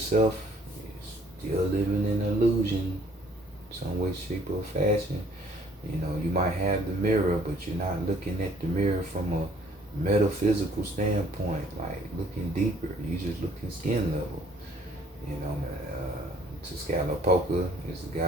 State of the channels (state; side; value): normal; both; correlation 0.60